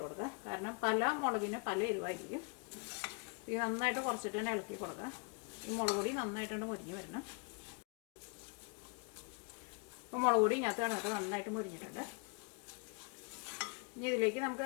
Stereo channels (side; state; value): right; quieter; 34.6 dB